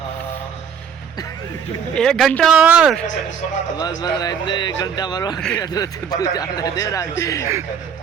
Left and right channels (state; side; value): quieter; left; 7.4 dB